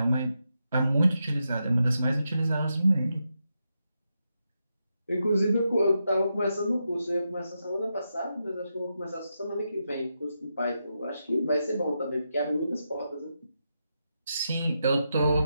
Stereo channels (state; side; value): inverted; both; correlation -0.85